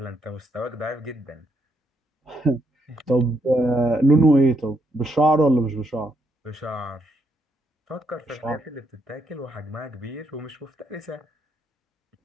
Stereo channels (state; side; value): normal; both; correlation 0.76